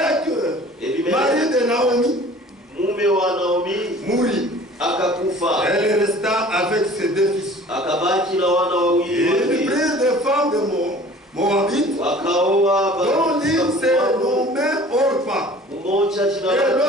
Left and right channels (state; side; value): normal; both; correlation 0.47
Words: mari de Naomi, mourit. Elle resta avec ses deux fils. Ils prirent des femmes de Moabite, dont l'une s'est nommée Orpa, et